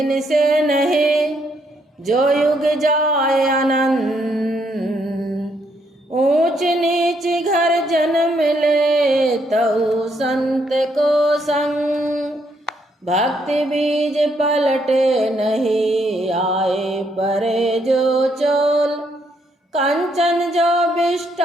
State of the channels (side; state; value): both; normal; correlation 0.73